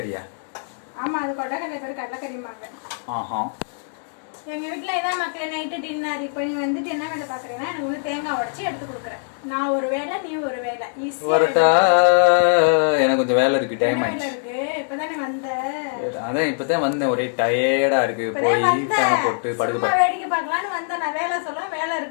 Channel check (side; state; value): right; silent; digital silence